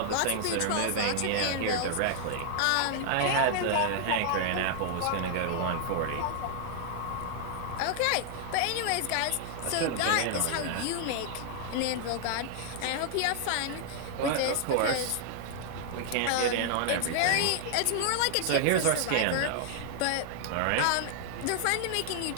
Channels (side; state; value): both; different; correlation -0.01